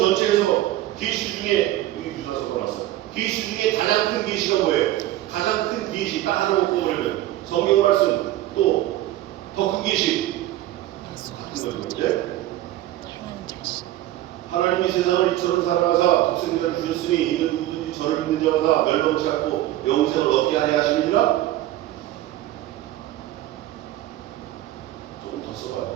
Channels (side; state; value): left; quieter; 14.8 dB